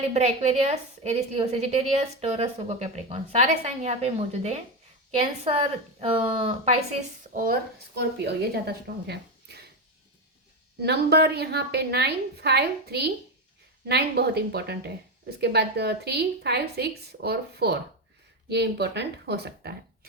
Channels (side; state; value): both; normal; correlation 0.13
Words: एक्वेरियस, एरिस, लियो, सेजिटेरियस, टॉरस, वर्गो, कैप्रिकॉर्न, सारे साइन यहाँ पे मौजूद हैं। कैंसर, पाइसिस और स्कॉर्पियो ये ज़्यादा स्ट्रॉन्ग है। नंबर यहाँ पे 9, 5, 3। 9 बहुत इंपॉर्टेंट है। उसके बाद 3, 5, 6 और 4 ये इंपॉर्टेंट हो सकता है।